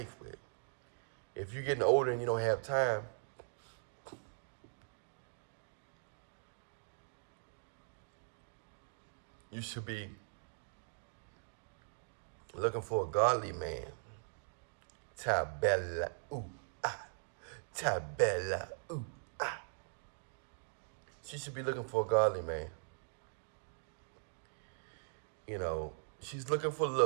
with? If you're getting older and you don't have time, you should be looking for a godly man. Tybella, ooh, ah. Tybella, ooh, ah. She should be looking for a godly man. You know, she's looking for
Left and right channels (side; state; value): left; silent; digital silence